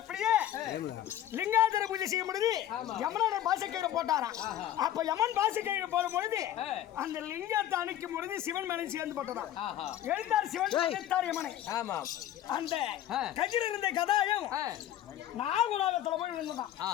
லிங்காதர பூஜை செய்யும் பொழுது யமனோட பாசக்கயிறு போட்டாராம். அப்ப யமன் பாசக்கயிறு போடும் பொழுது அந்த லிங்கத்தை அணைக்கும் பொழுது சிவன் மேலே சேர்ந்து போட்டதாம். எழுந்தார் சிவன் எழுத்தார் யமனை. அந்த கஜில் இருந்த கதாயம் நாகுலோகத்துல போய் இருந்ததான்.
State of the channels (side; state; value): right; quieter; 12.0 dB